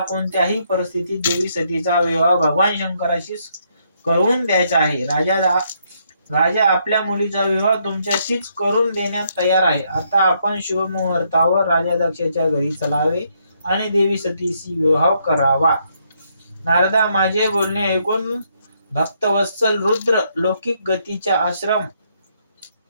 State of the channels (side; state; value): both; inverted; correlation -0.73